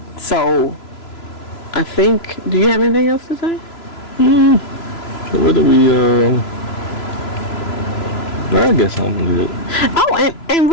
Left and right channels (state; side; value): late; right; 3.0 ms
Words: So, I think, do you have anything else to say? What do we, I guess I'm good. Oh, and